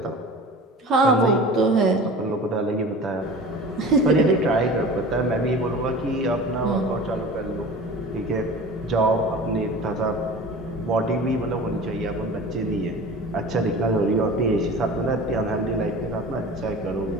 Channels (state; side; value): normal; both; correlation 0.38